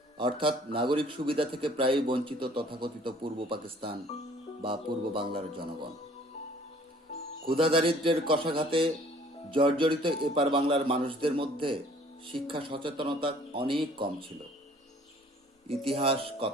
অর্থাৎ নাগরিক সুবিধা থেকে প্রায়ই বঞ্চিত তথাকথিত পূর্ব পাকিস্তান বা পূর্ব বাংলার জনগণ। ক্ষুধা দারিদ্র্যের কষাঘাতে জর্জরিত এপার বাংলার মানুষদের মধ্যে শিক্ষা সচেতনতা অনেক কম ছিল। ইতিহাস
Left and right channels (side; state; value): both; normal; correlation 0.55